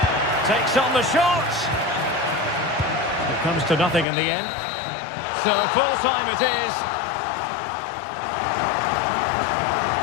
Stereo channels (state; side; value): drops out; right; at 4.0 s